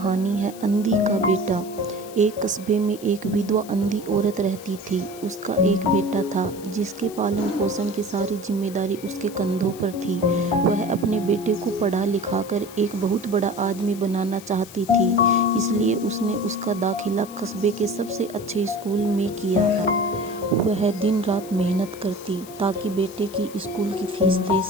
है अंधी का बेटा। एक कस्बे में एक विधवा अंधी औरत रहती थी। उसका एक बेटा था जिसके पालन पोषण की सारी जिम्मेदारी उसके कंधों पर थी। वह अपने बेटे को पढ़ा लिखा कर एक बहुत बड़ा आदमी बनाना चाहती थी, इसलिए उसने उसका दाखिला कस्बे के सबसे अच्छे स्कूल में किया। वह दिन रात मेहनत करती ताकि बेटे की स्कूल की फीस दे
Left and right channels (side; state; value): left; noise; hiss, 18 dB below the sound